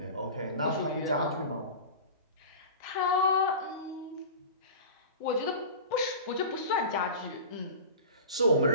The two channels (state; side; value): inverted; both; correlation -0.33